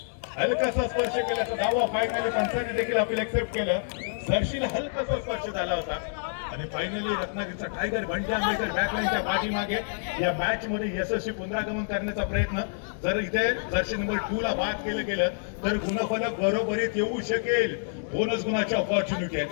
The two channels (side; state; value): right; silent; digital silence